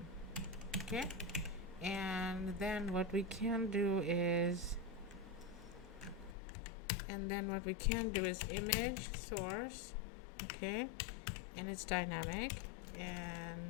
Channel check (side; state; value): right; drops out; at 6.4 s